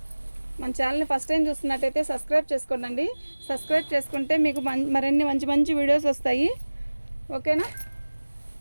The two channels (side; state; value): both; inverted; correlation -1.00